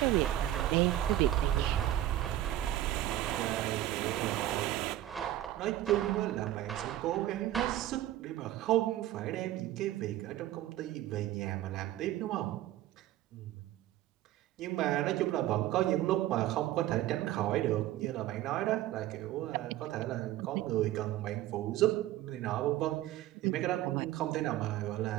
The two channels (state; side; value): quieter; left; 13.9 dB